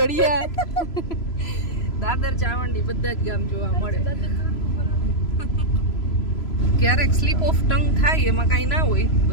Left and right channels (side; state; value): right; late; 3.0 ms